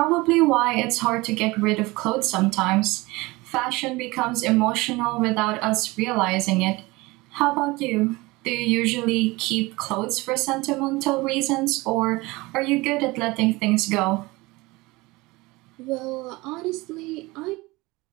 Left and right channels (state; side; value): quieter; left; 22.2 dB